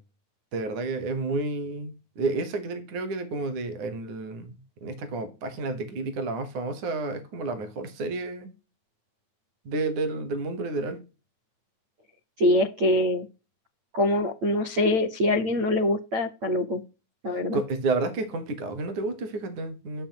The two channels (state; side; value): late; left; 8.9 ms